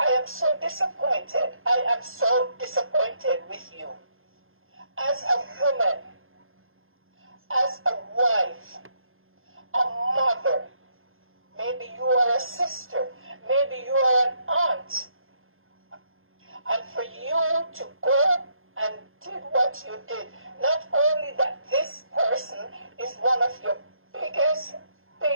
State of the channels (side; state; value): left; late; 0.60 ms